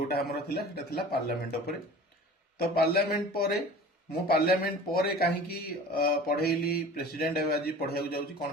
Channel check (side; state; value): both; normal; correlation 0.41